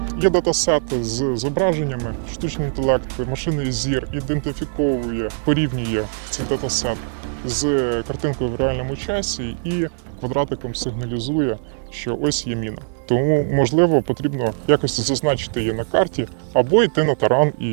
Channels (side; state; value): left; silent; digital silence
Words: Є датасети з зображеннями, штучний інтелект, машинний зір ідентифіковує, порівнює цей датасет з картинкою в реальному часі і квадратиком сигналізує, що ось є міна. Тому, можливо, потрібно якось зазначити її на карті або йти на таран